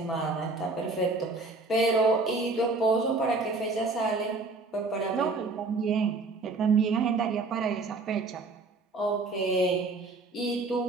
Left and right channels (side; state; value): left; quieter; 3.6 dB